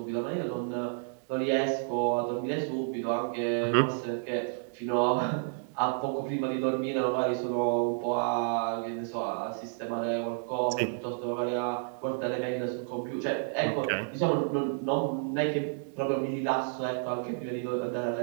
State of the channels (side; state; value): left; silent; digital silence